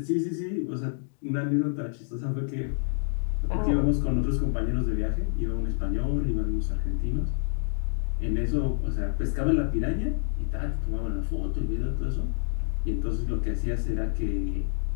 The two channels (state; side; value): silent; right; digital silence